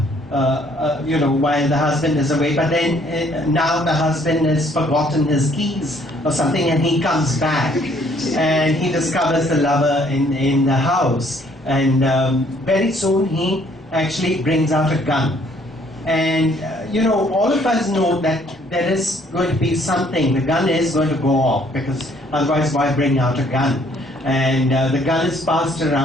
you know, while the husband is away, but then now the husband has forgotten his keys or something, and he comes back and he discovers the lover in the house, and very soon he actually brings out a gun. And you know, all of us know that there is going to be something, the gun is going to go off, because otherwise why bring out a gun? And the gun is passed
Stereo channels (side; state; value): both; normal; correlation 0.63